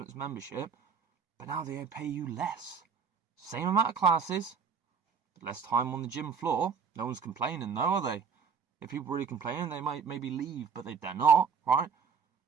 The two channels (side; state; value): left; quieter; 6.2 dB